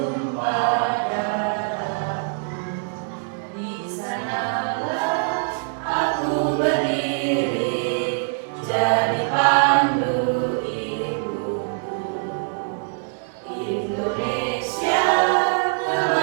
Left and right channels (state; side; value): silent; left; digital silence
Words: darahku. Di sanalah aku berdiri, jadi pandu ibuku. Indonesia,